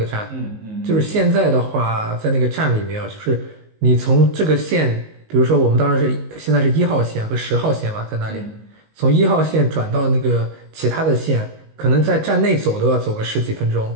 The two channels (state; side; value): late; left; 19 ms